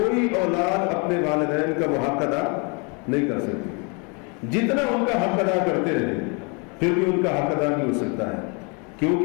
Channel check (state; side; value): quieter; right; 33.3 dB